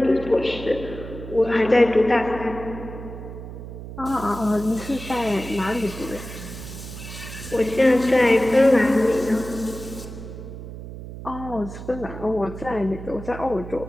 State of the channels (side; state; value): right; noise; hum, 11 dB below the sound